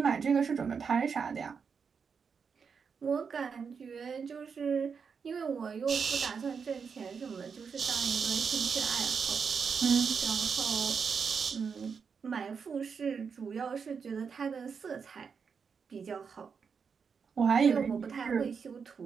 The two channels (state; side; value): quieter; left; 6.0 dB